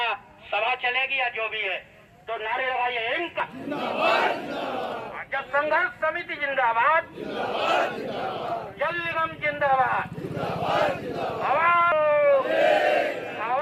सभा चलेगी या जो भी है। तो नारे लगाइए, इनका जब संघर्ष समिति जिंदाबाद, जल निगम जिंदाबाद,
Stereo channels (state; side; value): identical; both; correlation 1.00